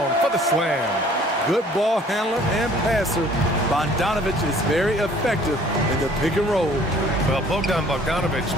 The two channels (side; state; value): both; normal; correlation 0.54